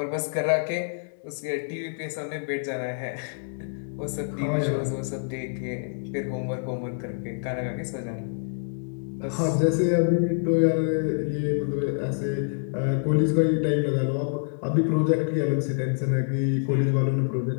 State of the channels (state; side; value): silent; right; digital silence